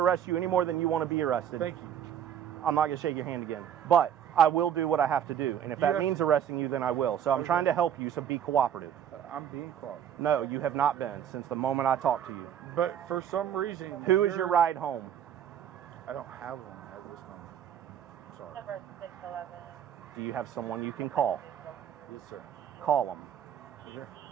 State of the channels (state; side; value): quieter; left; 9.4 dB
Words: arrest you any more than you want to be arrested. Thank you. I'm not going to shake your hand again. But I will do what I have to do. And if that have means arresting you, then I will. So I'm Okay. trying to help you, so be cooperative. I'm being called. No, you have not been since the moment I talked to you. But for some reason, Who is your ride home? I don't have one at this moment. Sorry. Number 611. Do you have someone you can call? Yes, sir. Call them Here.